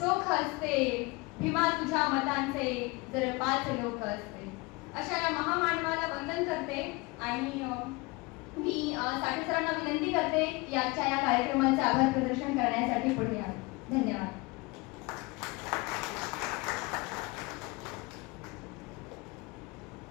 असते. भीमा तुझ्या मतांचे जर 5 लोक असते. अशा या महामानवाला वंदन करते आणि मी साठे सरांना विनंती करते की आजच्या या कार्यक्रमाचे आभार प्रदर्शन करण्यासाठी पुढे यावे. धन्यवाद.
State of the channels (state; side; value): quieter; right; 25.0 dB